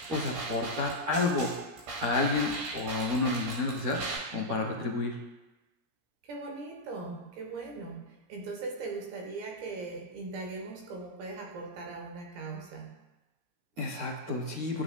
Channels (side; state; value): left; late; 17 ms